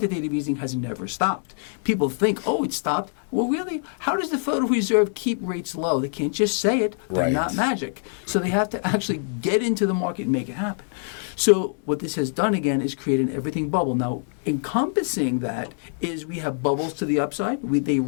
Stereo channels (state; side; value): silent; right; 62 dB below the other